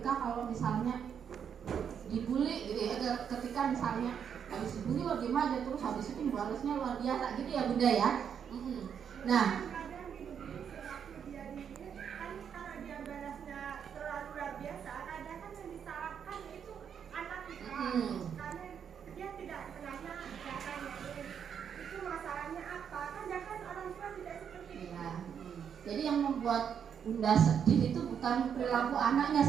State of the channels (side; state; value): left; quieter; 7.8 dB